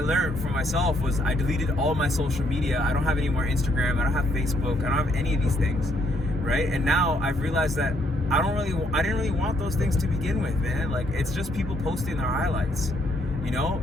for myself was I deleted all my social media. I don't have any more Instagram. I don't have Facebook. I don't have any of these things, right? And now I've realized that I didn't really want those things to begin with, man. Like, it's just people posting their highlights.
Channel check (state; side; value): normal; both; correlation 0.71